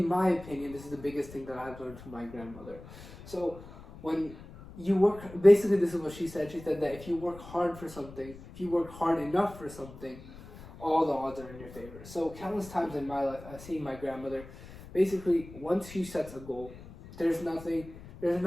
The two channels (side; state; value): left; noise; rumble, 17 dB below the sound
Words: my opinion, this is the biggest thing that I've learned from my grandmother. So when you work, basically this is what she said. She said that if you work hard for something, if you work hard enough for something, all the odds are in your favor. So countless times in my life, I've seen my grandmother, basically, once she sets a goal, there's nothing